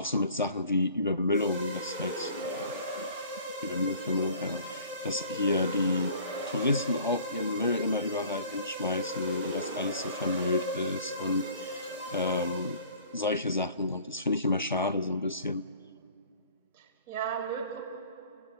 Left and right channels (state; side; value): inverted; both; correlation -0.49